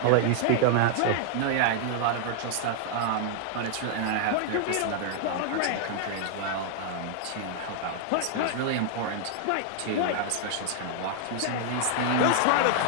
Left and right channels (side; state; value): both; different; correlation 0.00